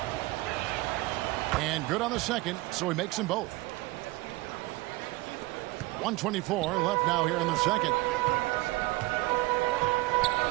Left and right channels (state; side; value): quieter; left; 21.3 dB